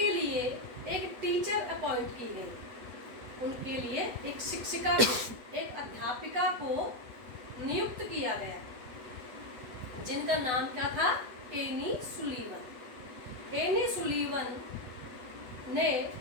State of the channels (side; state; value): left; late; 8.0 ms